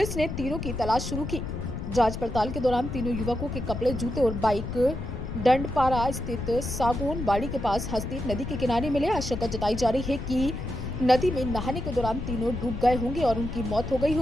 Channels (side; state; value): left; noise; rumble, 6 dB below the sound